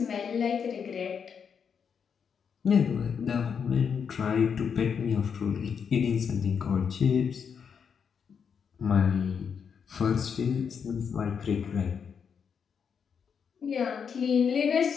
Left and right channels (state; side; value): quieter; right; 6.8 dB